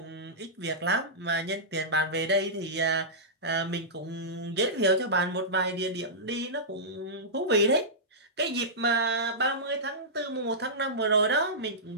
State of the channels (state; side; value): normal; both; correlation -0.15